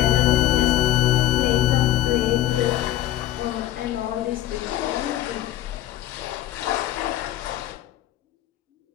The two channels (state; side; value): quieter; right; 13.3 dB